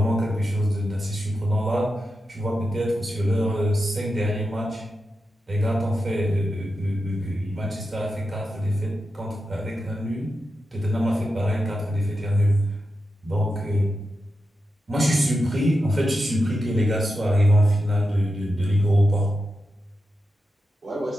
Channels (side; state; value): both; normal; correlation 0.89